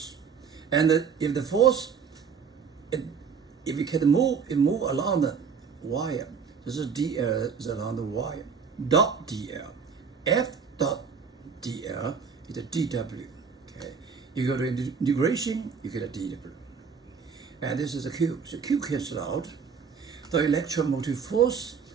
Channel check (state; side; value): quieter; left; 6.1 dB